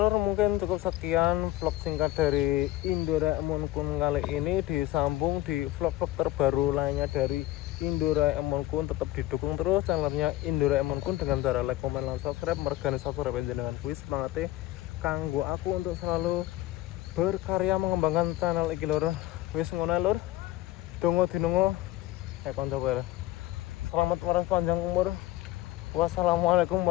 mungkin cukup sekian vlog singkat dari Indoraemon Kun kali ini. Disambung di vlog-vlog terbaru lainnya dari Indoraemon Kun. Tetap didukung terus channelnya Indoraemon Kun dengan cara like, komen, dan subscribe. Mergani subscribe dengan kuis semangatnya kanggo aku untuk selalu berkarya mengembangkan channel iki lor. Wis ngono lor, dongo dinongo konco bae. Selamat waras panjang umur. Wassalamualaikum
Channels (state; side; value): quieter; right; 16.0 dB